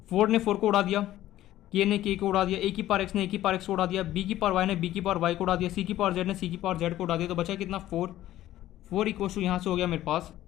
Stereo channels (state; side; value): quieter; right; 14.0 dB